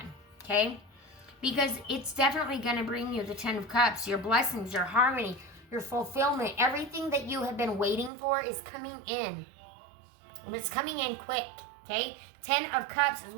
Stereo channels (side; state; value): left; drops out; at 8.1 s